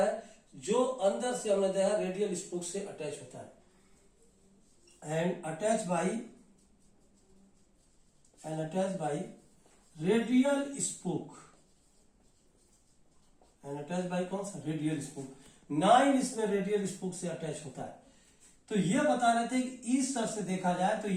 जो अंदर से हमने देखा रेडियल स्पोक से अटैच होता है and attach by radial spoke and attach by कौन सा? Radial spoke. 9 इसमें रेडियल स्पोक से अटैच होता है। तो ये बता रहे थे कि इस तरह से देखा जाए तो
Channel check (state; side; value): identical; both; correlation 1.00